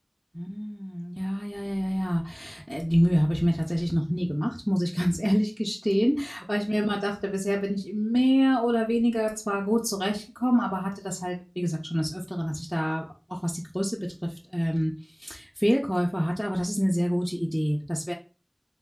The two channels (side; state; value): both; identical; correlation 1.00